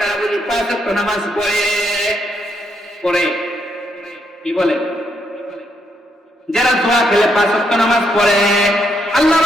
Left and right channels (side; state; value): both; normal; correlation 0.76